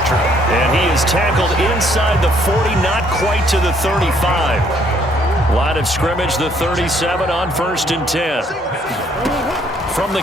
drill. And he is tackled inside the 40, not quite to the 35. Line of scrimmage, the 37 on 1st and 10. From the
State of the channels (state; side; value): normal; both; correlation 0.65